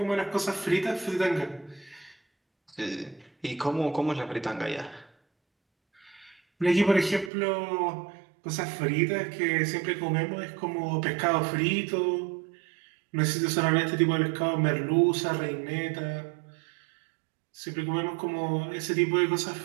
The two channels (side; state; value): left; drops out; at 7.3 s